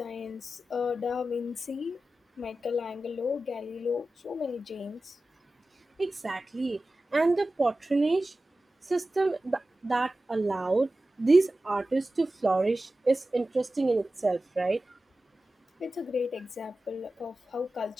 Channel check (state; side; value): normal; both; correlation 0.94